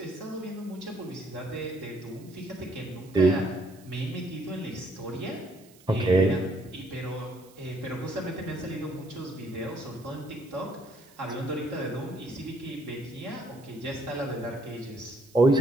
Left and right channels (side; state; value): right; noise; hiss, 25 dB below the sound